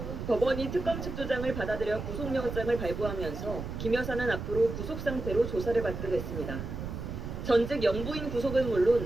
법원이 특검 측 주장을 받아들여 구속영장을 발부하면서 김 여사는 앞으로 구속 상태로 조사를 받게 됐습니다. 전직 영부인 구속은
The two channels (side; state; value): right; noise; rumble, 6 dB below the sound